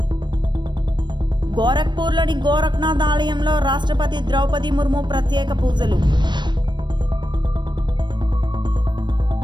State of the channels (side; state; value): left; late; 0.22 ms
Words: గోరఖ్పూర్లోని Gorakhnath ఆలయంలో రాష్ట్రపతి ద్రౌపది ముర్ము ప్రత్యేక పూజలు.